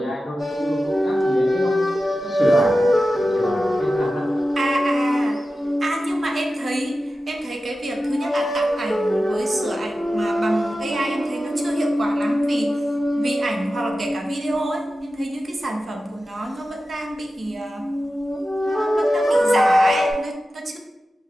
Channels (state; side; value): normal; both; correlation 0.93